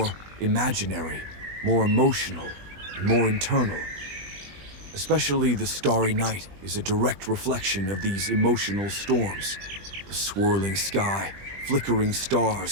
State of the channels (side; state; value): left; late; 20 ms